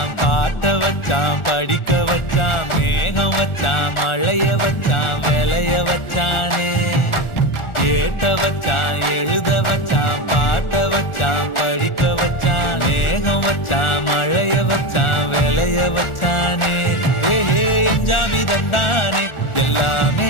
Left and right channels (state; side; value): late; right; 1.4 ms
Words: பாட்ட வச்சான் படிக்க வச்சான் மேகம் வச்சான் மழைய வச்சான் விளைய வச்சானே ஏத்த வச்சான் எழுத வச்சான் பாட்ட வச்சான் படிக்க வச்சான் மேகம் வச்சான் மழைய வச்சான் விளைய வச்சானே ஏஹே எஞ்சாமி தந்தானே எல்லாமே